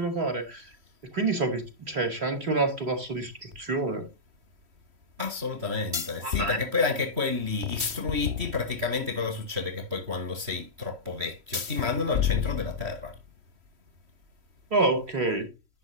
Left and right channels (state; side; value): late; left; 3.1 ms